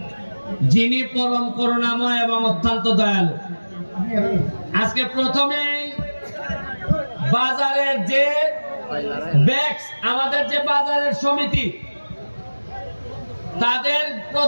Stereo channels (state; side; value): inverted; both; correlation -1.00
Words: যিনি পরম করুণাময় এবং অত্যন্ত দয়ালু। আজকে প্রথমে বাজারের যে ব্যাক্স, আমাদের যে বাজারের সমিতি, তাদের